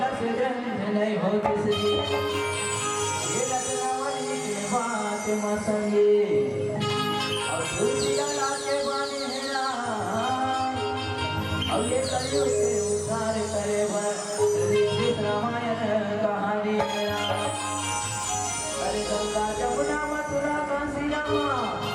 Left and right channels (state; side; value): identical; both; correlation 1.00